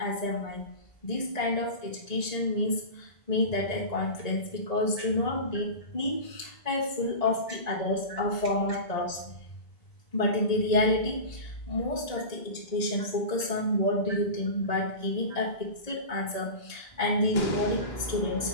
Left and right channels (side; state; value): right; late; 1.9 ms